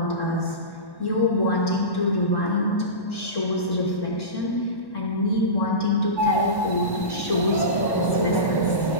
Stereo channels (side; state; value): right; late; 1.1 ms